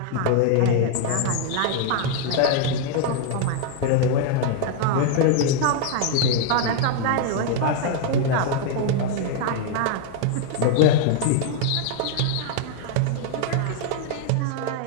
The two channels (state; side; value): different; both; correlation 0.00